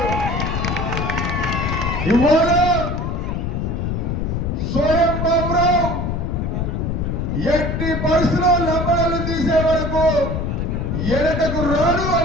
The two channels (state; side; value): noise; left; rumble, 1 dB below the sound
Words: ఇవాళ స్వయం బాబురావు ఎట్టి పరిస్థితుల్లో లంబడాలు తీసే వరకు వెనకకు రాడు